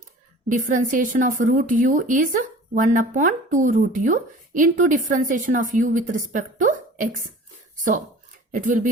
Differentiation of root u is 1 upon 2 root u into differentiation of u with respect to x. So it will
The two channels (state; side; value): normal; both; correlation 0.43